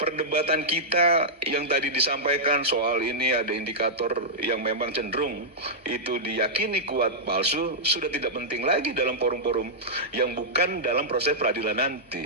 perdebatan kita yang tadi disampaikan soal ini ada indikator yang memang cenderung itu diyakini kuat palsu, sudah tidak penting lagi dalam forum-forum yang bukan dalam proses peradilan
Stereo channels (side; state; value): both; normal; correlation -0.10